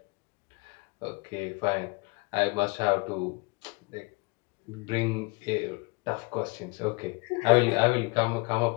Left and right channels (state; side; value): quieter; right; 29.1 dB